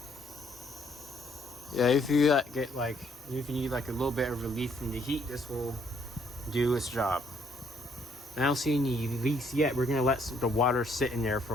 Yeah, if you need like a little bit of relief from the heat, this will do its job. I don't see any leaks yet. We're gonna let the water sit in there for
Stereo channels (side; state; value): both; normal; correlation 0.68